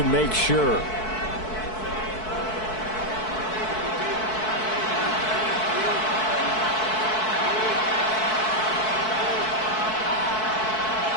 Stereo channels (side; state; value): right; late; 4.6 ms